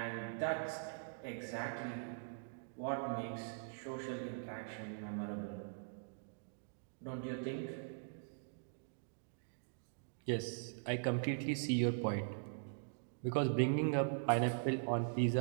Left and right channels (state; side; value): silent; left; digital silence